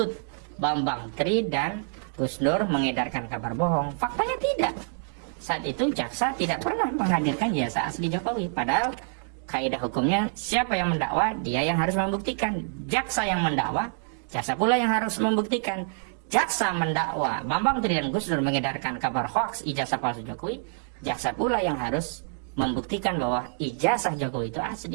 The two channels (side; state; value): left; silent; digital silence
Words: Bambang Tri dan Gus Nur mengedarkan kabar bohong. Faktanya tidak. Saat itu jaksa tidak pernah menghadirkan ijazah asli Jokowi. Padahal kaidah hukumnya siapa yang mendakwa, dia yang harus membuktikan. Jaksa yang mendakwa, jaksa pula yang harus membuktikan. Jaksa mendakwa Bambang Tri dan Gus Nur mengedarkan kabar hoaks ijazah palsu Jokowi, jaksa pula yang harus membuktikan bahwa ijazah Jokowi itu asli,